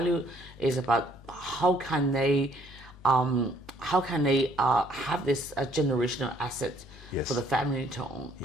is about how can they have this generational asset for the family to own.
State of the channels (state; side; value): normal; both; correlation 0.63